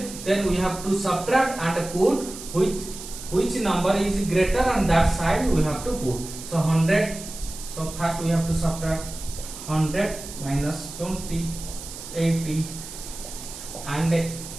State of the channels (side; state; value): right; noise; hiss, 12 dB below the sound